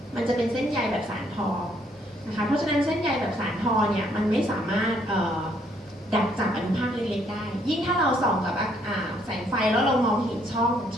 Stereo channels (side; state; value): both; normal; correlation 0.68